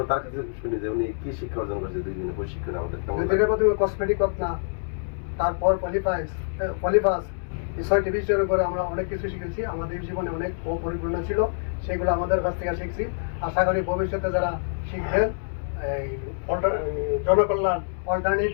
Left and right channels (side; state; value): right; silent; digital silence